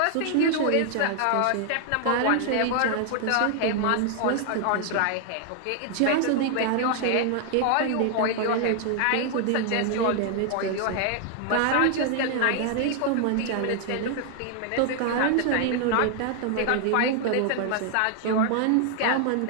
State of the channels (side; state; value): both; different; correlation 0.00